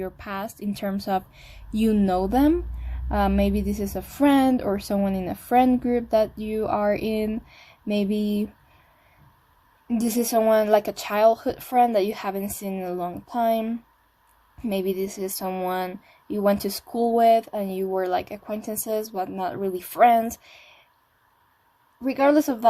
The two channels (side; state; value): both; identical; correlation 1.00